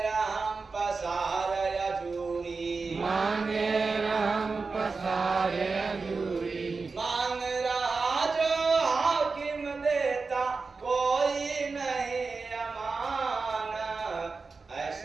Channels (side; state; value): left; quieter; 4.3 dB